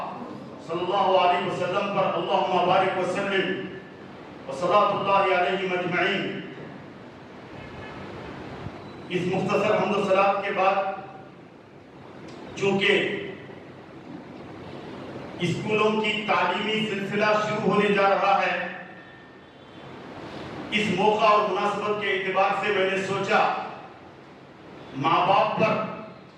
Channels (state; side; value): identical; both; correlation 1.00